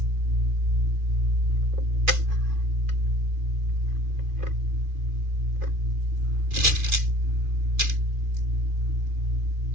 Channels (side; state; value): left; late; 2.4 ms